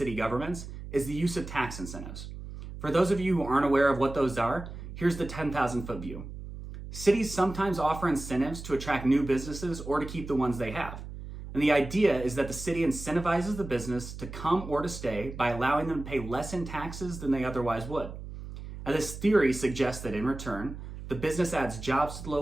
governments is the use of tax incentives. For those of you who aren't aware of what those are, here's the 10,000-foot view. Cities sometimes offer incentives to attract new businesses or to keep the ones they have. And the idea is that the city incentivizes the business to come or to stay by allowing them to pay less in taxes than they otherwise would. Now, this theory suggests that in return, the business adds jobs to the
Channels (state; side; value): noise; right; hum, 11 dB below the sound